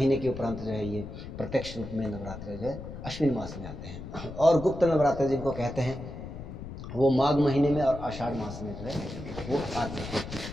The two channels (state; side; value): noise; left; rumble, 10 dB below the sound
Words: के उपरांत जो है ये प्रत्यक्ष रूप में नवरात्र जो है अश्विन मास में आते हैं। और गुप्त नवरात्र जिनको कहते हैं वो माघ महीने में और आषाढ़ मास में जो है वो आते हैं।